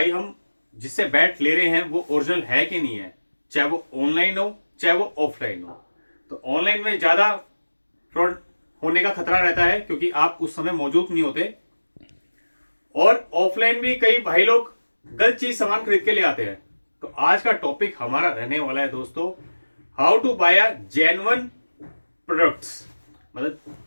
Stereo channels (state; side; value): inverted; both; correlation -1.00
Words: हम जिससे बैट ले रहे हैं वो ओरिजिनल है कि नहीं है, चाहे वो ऑनलाइन हो चाहे वो ऑफलाइन हो, तो ऑनलाइन में ज़्यादा फ्रॉड होने का खतरा रहता है क्योंकि आप उस समय मौजूद नहीं होते, और ऑफलाइन भी कई भाई लोग गलत चीज सामान खरीद के ले आते हैं। तो आज का टॉपिक हमारा रहने वाला है दोस्तों, how to buy a genuine products. मतलब